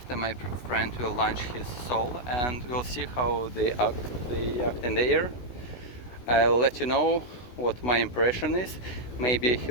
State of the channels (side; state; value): right; late; 16 ms